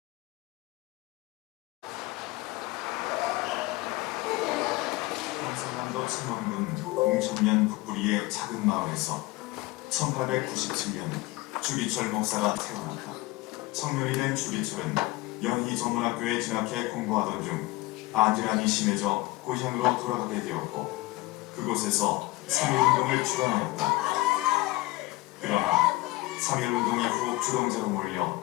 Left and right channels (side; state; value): right; quieter; 20.6 dB